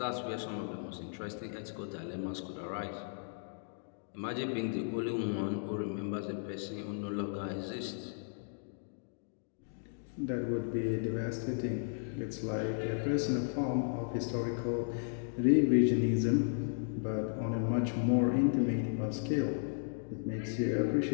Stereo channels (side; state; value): right; silent; digital silence